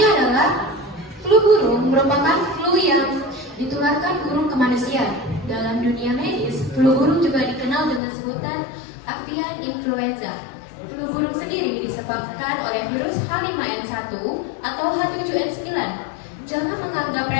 adalah flu burung merupakan flu yang ditularkan burung ke manusia. Dalam dunia medis, flu burung juga dikenal dengan sebutan avian influenza. Flu burung sendiri disebabkan oleh virus H5N1 atau H7N9. Jangan menganggap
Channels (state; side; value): drops out; right; at 8.0 s